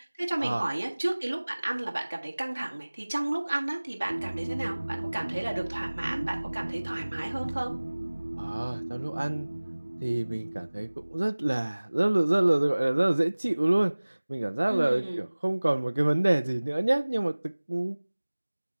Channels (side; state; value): both; inverted; correlation -1.00